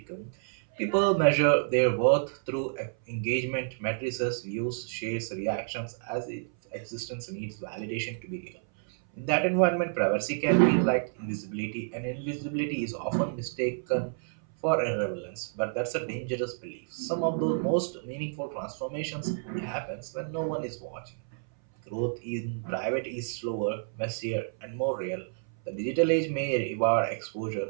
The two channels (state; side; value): silent; left; 58 dB below the other